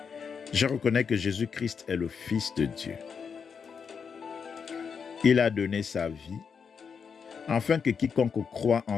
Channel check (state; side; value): quieter; right; 6.3 dB